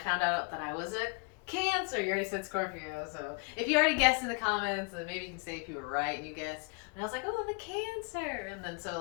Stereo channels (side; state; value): right; quieter; 33.0 dB